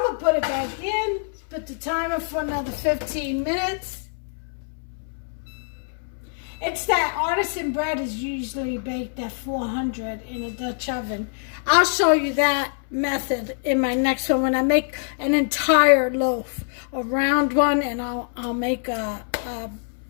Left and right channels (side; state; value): right; silent; 62 dB below the other